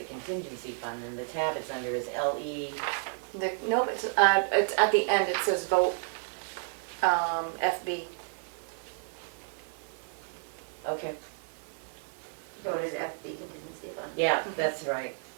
contingency fund, and the tab it's under is LE. Nope, it's at the end, it says vote, FB. Okay, Voted FB contingency fund. yeah, that's right.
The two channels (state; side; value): silent; left; 57 dB below the other